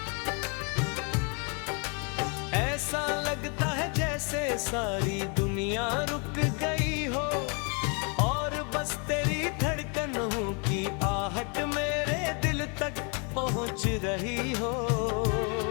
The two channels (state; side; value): quieter; right; 35.5 dB